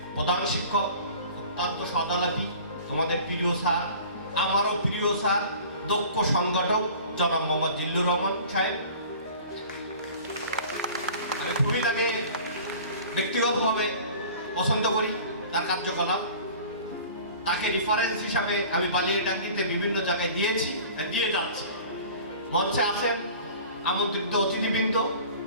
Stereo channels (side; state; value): both; inverted; correlation -0.43